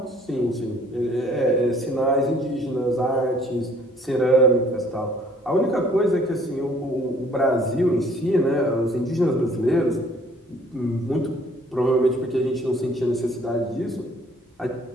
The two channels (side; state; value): both; normal; correlation 0.58